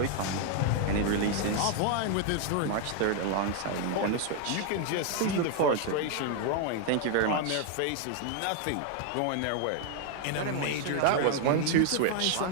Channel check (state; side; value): different; both; correlation 0.01